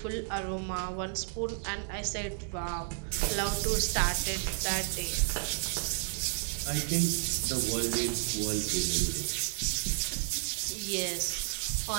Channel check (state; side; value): silent; left; 57 dB below the other